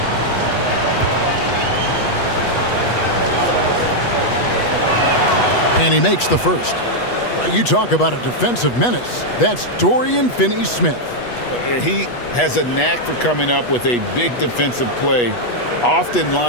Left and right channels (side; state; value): right; late; 8.2 ms